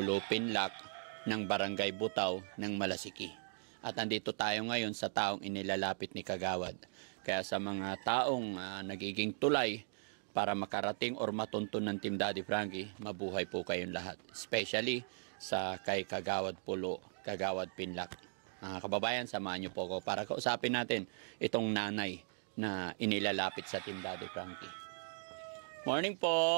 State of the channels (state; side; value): silent; left; digital silence